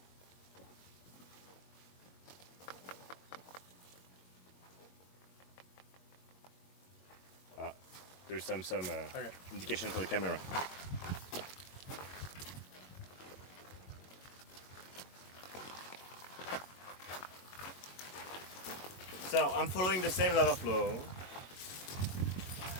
There's some Okay. indication for the camera. So I'm following the same lava flow.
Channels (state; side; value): late; right; 22 ms